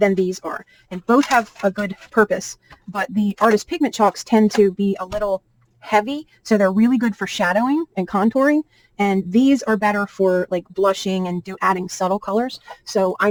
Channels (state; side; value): identical; both; correlation 1.00